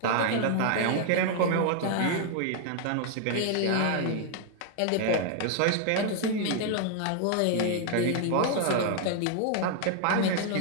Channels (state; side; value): different; both; correlation 0.00